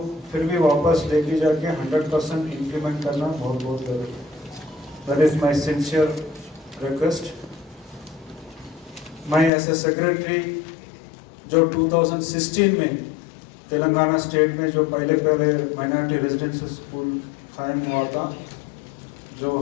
फिर भी वापस लेके जाके 100% इम्प्लीमेंट करना बहुत बहुत ज़रूरी है। That is my sincere request. मैं एज ए सेक्रेटरी जो 2016 में तेलंगाना स्टेट में जो पहले माइनॉरिटी रेजिडेंशियल स्कूल कायम हुआ था, जो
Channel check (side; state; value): right; drops out; at 9.5 s